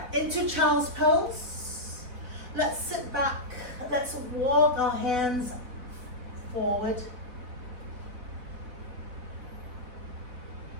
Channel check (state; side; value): late; left; 4.0 ms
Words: Into child's pose. Let's sit back. Let's walk our hands forward.